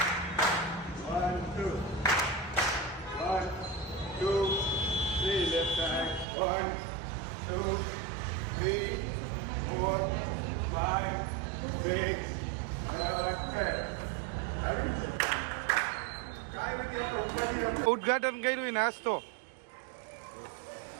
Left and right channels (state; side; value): drops out; left; at 6.2 s